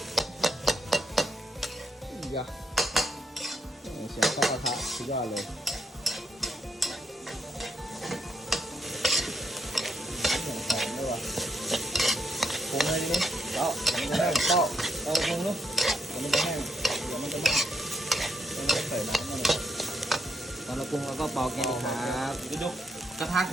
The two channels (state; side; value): normal; both; correlation 0.76